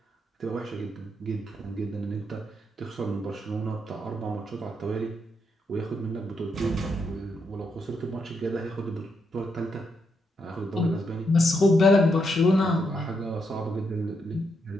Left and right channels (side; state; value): both; normal; correlation 0.79